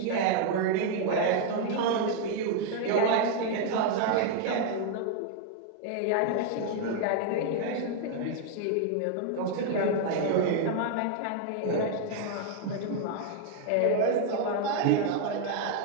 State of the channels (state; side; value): different; both; correlation 0.00